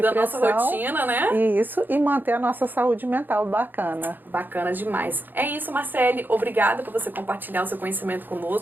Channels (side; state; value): left; late; 0.090 ms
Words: pressão. Da nossa rotina, né? Isso, e manter a nossa saúde mental bacana. Bacana demais. É isso, Marcele. Obrigada por você compartilhar o seu conhecimento